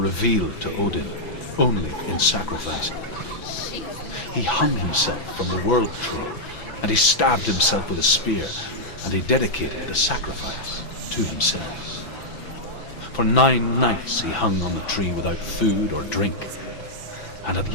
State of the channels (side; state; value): right; late; 5.9 ms